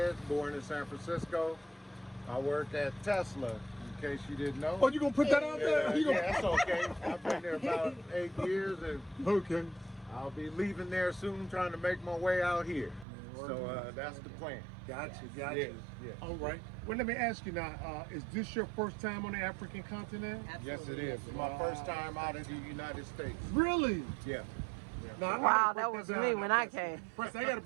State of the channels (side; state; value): left; drops out; at 13.1 s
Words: born in San Francisco. I work at Tesla, in case you didn't know. Oh, you gonna put that out there? You Yeah, that's okay. I've been there about 8 years, and Okay. I'll be leaving there soon, trying to make my way out here. So that's the plan. Gotcha, Yes, gotcha. yes. All right. Well, let me ask you now, is this your first time on the African continent? Yes, it is. It's my first time out of the United States. Really? Yeah. Now, I Wow, gotta that break was down me now, when I Preston. came. Preston, I got to